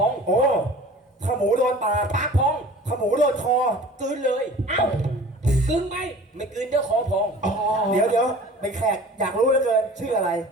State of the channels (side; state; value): both; normal; correlation 0.44